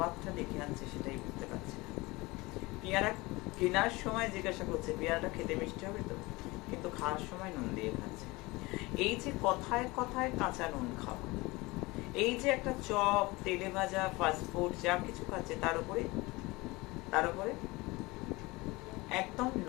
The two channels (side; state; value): right; quieter; 22.7 dB